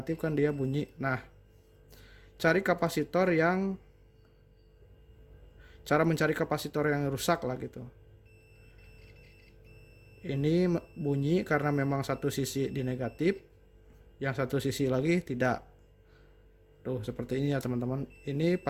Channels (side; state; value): both; identical; correlation 1.00